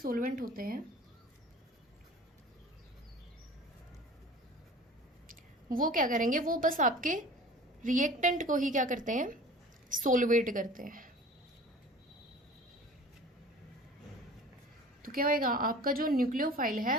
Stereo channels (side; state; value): both; normal; correlation 0.43